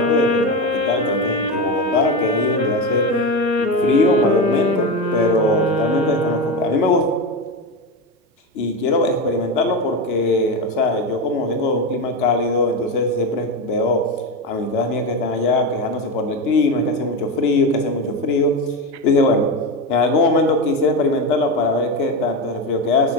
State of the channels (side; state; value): both; normal; correlation 0.17